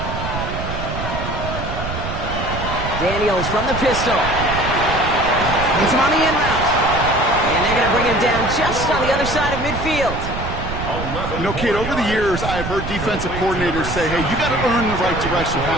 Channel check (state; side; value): noise; right; rumble, 6 dB below the sound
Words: Daniels from the pistol. Hits him on the in route. And they're going to bring him down just on the other side of midfield. You know, Kate, over the years, I've heard defensive coordinators say, hey, you got to earn the right to rush the